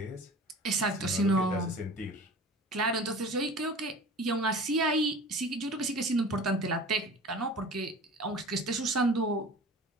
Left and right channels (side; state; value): both; normal; correlation 0.40